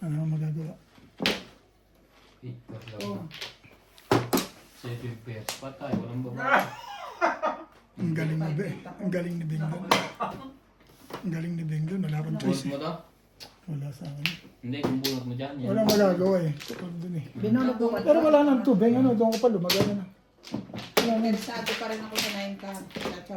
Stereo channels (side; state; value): both; identical; correlation 1.00